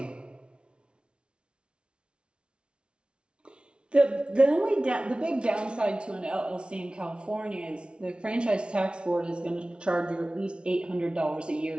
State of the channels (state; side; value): late; left; 0.057 ms